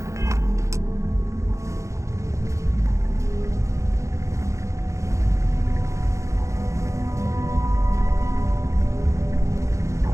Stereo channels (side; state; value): left; late; 0.15 ms